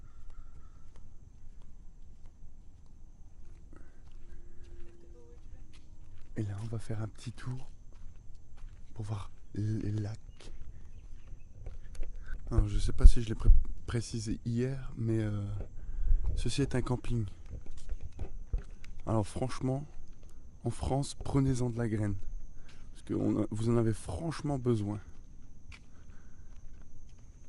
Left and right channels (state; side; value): identical; both; correlation 1.00